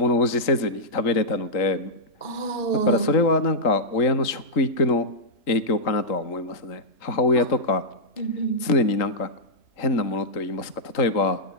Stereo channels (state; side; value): late; right; 3.8 ms